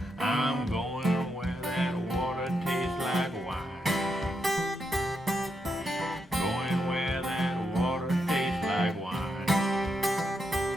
I'm going where that water tastes like wine. Going where that water tastes like wine.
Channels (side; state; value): both; normal; correlation 0.82